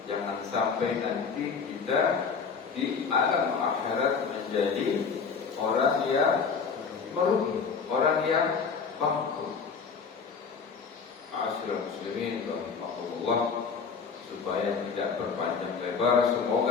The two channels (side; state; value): right; quieter; 5.7 dB